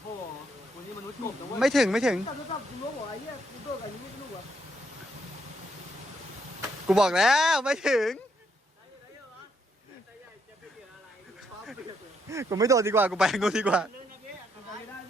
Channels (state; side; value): normal; both; correlation 0.74